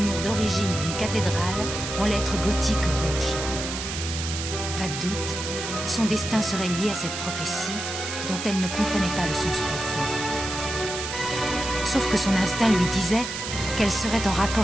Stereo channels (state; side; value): noise; right; hiss, 6 dB below the sound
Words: d'origine d'une cathédrale, en lettres gothiques rouges. Pas de doute, son destin serait lié à cette prophétie, dont elle ne comprenait pas le sens profond. Sauf que son instinct lui disait qu'elle serait en